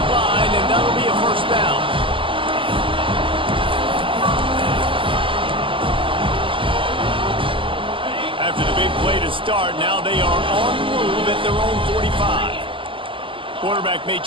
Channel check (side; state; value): left; late; 0.25 ms